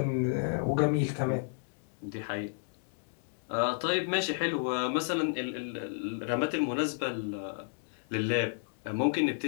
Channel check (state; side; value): silent; right; digital silence